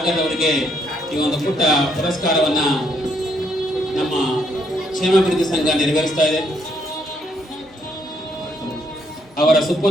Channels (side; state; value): both; normal; correlation 0.72